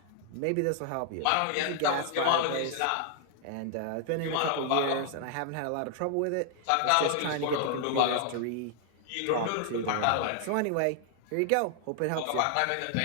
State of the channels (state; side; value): different; both; correlation 0.00